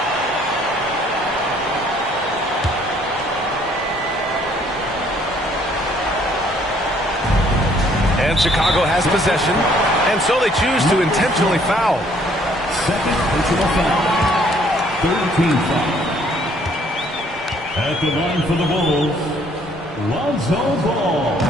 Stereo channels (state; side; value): normal; both; correlation 0.62